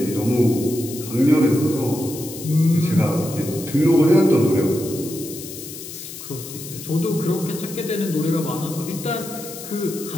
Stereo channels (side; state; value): left; noise; hiss, 12 dB below the sound